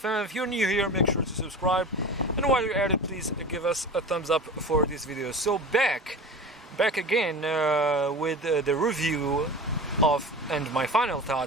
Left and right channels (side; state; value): both; normal; correlation 0.33